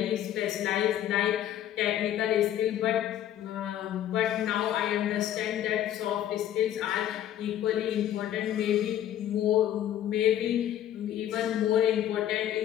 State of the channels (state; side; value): quieter; right; 11.4 dB